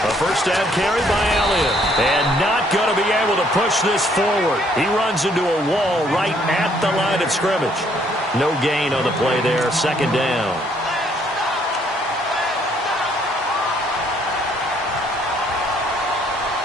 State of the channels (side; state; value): both; normal; correlation 0.66